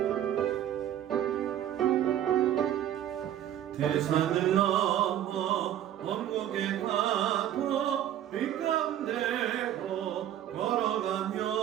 대산을 넘어 원국에 가도 빛 가운데로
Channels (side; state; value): left; quieter; 11.3 dB